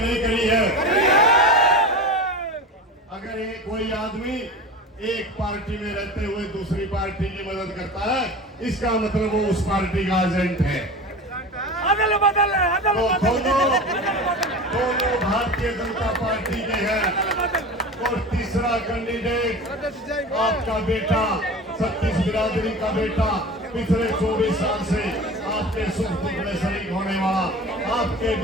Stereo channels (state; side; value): normal; both; correlation 0.32